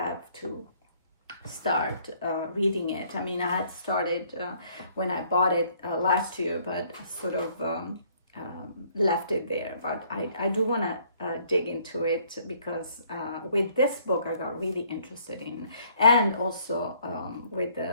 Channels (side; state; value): both; inverted; correlation -0.63